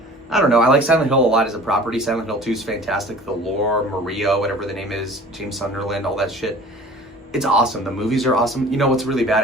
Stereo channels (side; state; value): both; normal; correlation 0.45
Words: I don't know. I like Silent Hill a lot as a property. Silent Hill 2 is fantastic. The lore, Maria, whatever the name is, James Sunderland, all that shit. It's awesome. The movies are awesome. You know what's really bad?